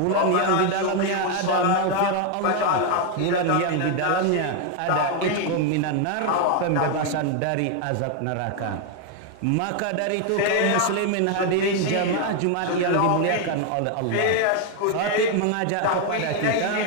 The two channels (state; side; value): different; both; correlation 0.01